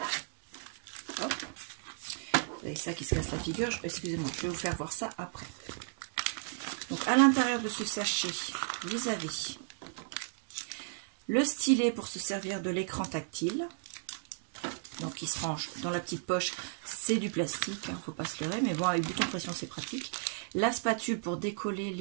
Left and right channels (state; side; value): silent; left; digital silence